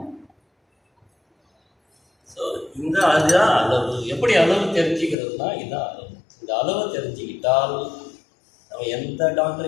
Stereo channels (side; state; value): right; drops out; at 5.2 s